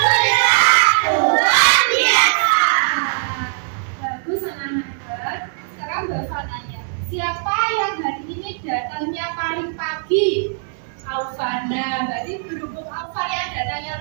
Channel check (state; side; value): silent; left; 66 dB below the other